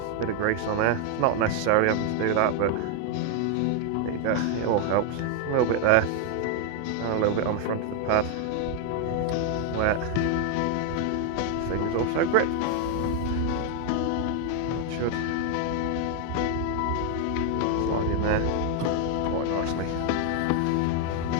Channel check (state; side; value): different; both; correlation 0.01